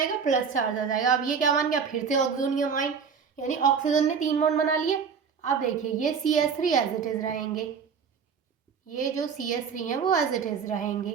प्लस चार्ज आ जाएगा। अब ये क्या बन गया, फिर से ऑक्सोनियम आयन, यानी ऑक्सीजन ने 3 बॉन्ड बना लिए। अब देखिए ये CH3 एज इट इज़ रहेंगे, ये जो CH3 है वो एज इट इज़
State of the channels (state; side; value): quieter; left; 6.3 dB